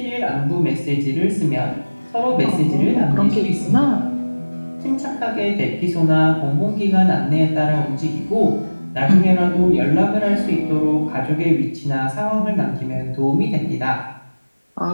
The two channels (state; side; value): inverted; both; correlation -1.00